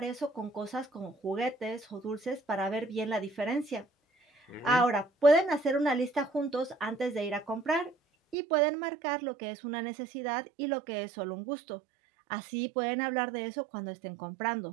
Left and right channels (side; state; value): left; drops out; at 8.3 s